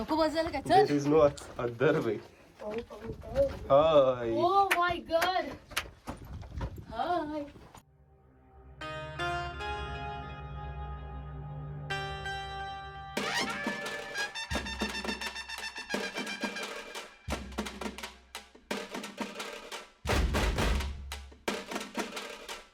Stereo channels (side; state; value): both; identical; correlation 1.00